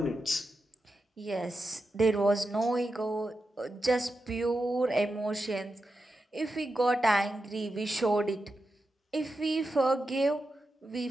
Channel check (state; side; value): normal; both; correlation 0.89